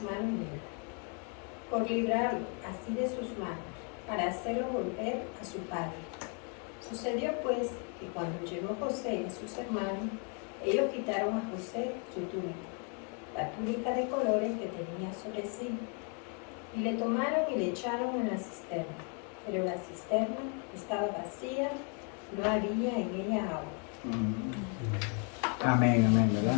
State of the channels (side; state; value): right; quieter; 39.5 dB